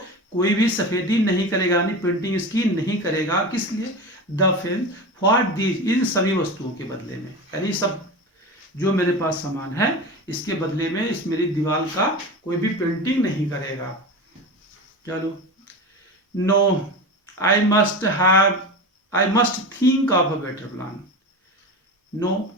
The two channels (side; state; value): both; normal; correlation 0.27